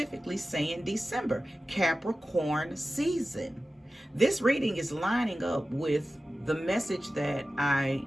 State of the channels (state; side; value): normal; both; correlation 0.95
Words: saying December, Capricorn season. This reading is lining up with the message that I